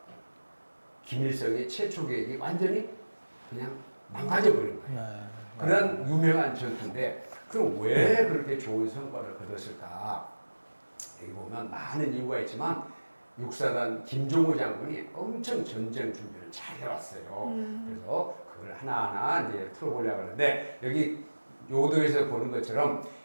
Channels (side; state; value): both; inverted; correlation -1.00